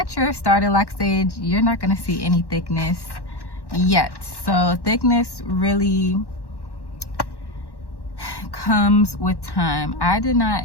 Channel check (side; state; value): right; late; 1.1 ms